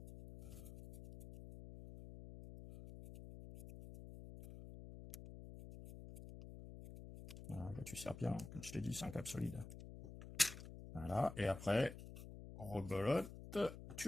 Voilà, là tu serres bien, comme je t'ai dit, c'est un câble solide. Voilà, et après, rebelote, tu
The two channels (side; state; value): left; noise; hum, 12 dB below the sound